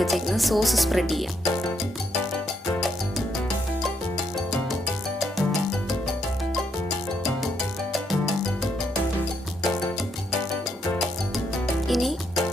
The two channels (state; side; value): normal; both; correlation 0.76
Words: വെച്ചേക്കുന്ന സോസ് സ്പ്രെഡ് ചെയ്യാം. ഇനി